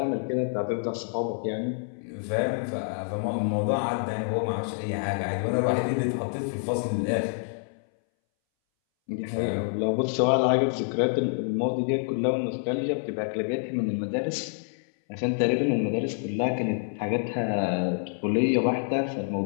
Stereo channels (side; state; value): right; silent; 60 dB below the other